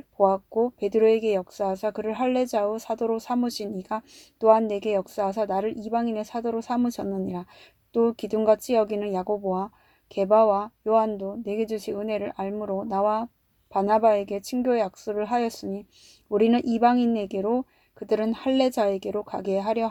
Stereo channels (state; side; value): identical; both; correlation 1.00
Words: 보았고 베드로에게 역사하사 그를 할례자의 사도로 삼으신 이가 또한 내게 역사하사 나를 이방인의 사도로 삼으셨느니라. 또 기둥같이 여기는 야고보와 게바와 요한도 내게 주신 은혜를 알므로 나와 바나바에게 친교의 약속을 하였으니 우리는 이방인에게로 그들은 할례자에게로 가게 하려